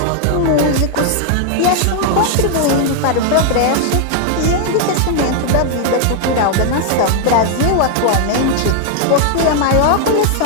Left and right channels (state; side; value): different; both; correlation 0.00